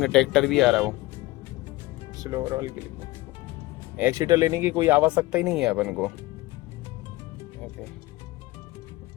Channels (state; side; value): quieter; right; 19.6 dB